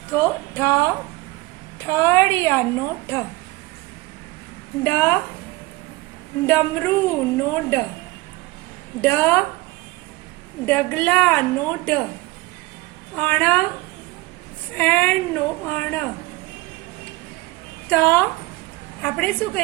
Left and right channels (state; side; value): quieter; left; 20.7 dB